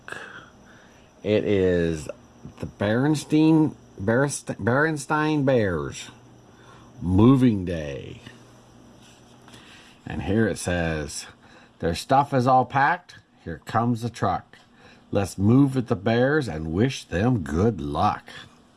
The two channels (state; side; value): identical; both; correlation 1.00